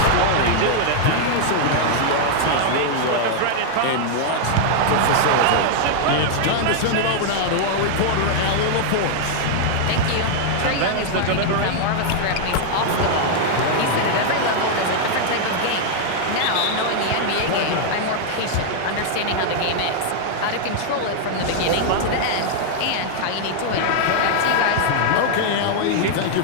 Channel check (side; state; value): both; different; correlation -0.01